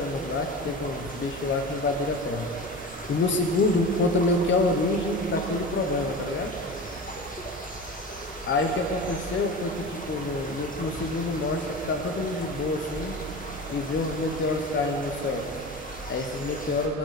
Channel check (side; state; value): both; normal; correlation 0.31